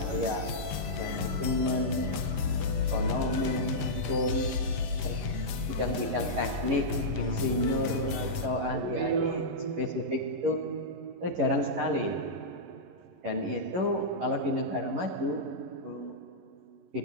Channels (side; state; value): left; late; 11 ms